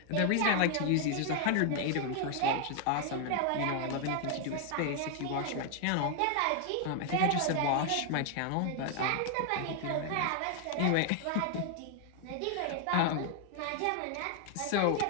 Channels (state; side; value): different; both; correlation 0.00